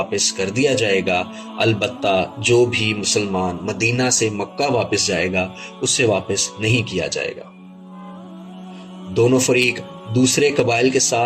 کر دیا جائے گا، البتہ جو بھی مسلمان مدینہ سے مکہ واپس جائے گا، اسے واپس نہیں کیا جائے گا۔ دونوں فریق دوسرے قبائل کے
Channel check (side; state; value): both; identical; correlation 1.00